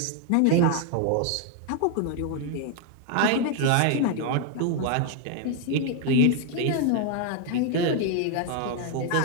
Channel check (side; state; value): both; different; correlation 0.01